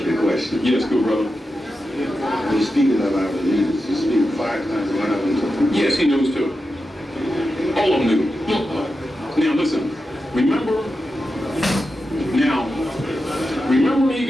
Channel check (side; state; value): both; normal; correlation 0.90